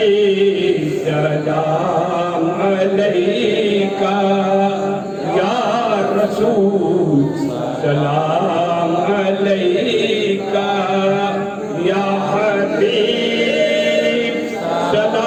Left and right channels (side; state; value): both; identical; correlation 1.00